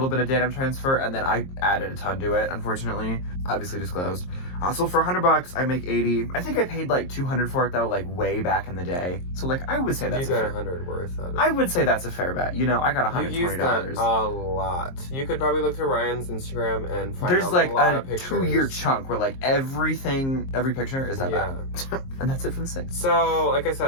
bit of denim transfer, and then I added a ton to it, unfortunately. Obviously disclosed. So for $100, I make $80. I think I paid like $200 for it though, like way back in the day. So like I would say that's you got $100 worth out of it. I would say that's a fair bet. You know, I got $120. You used that a lot. You could probably look through Ryan's Instagram and find There's like lot a of pictures. 2-year chunk where like every picture is that bag. And that's it for the 6th. So, like I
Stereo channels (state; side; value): late; right; 22 ms